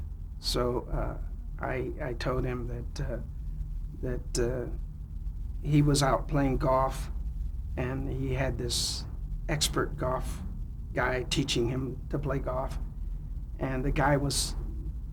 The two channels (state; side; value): identical; both; correlation 1.00